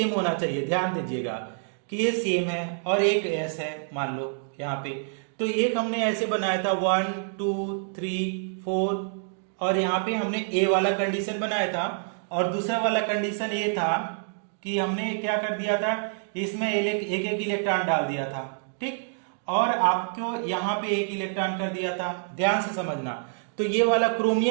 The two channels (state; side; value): silent; left; digital silence